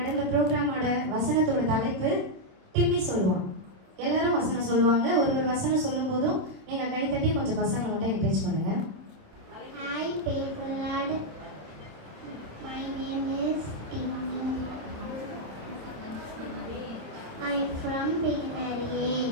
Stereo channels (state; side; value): late; left; 27 ms